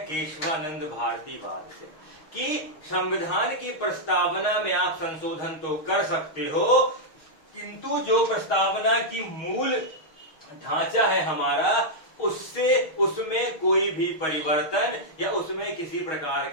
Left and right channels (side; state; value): right; late; 6.4 ms